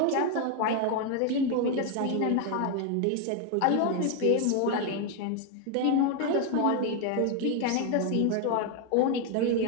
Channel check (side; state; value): both; different; correlation 0.01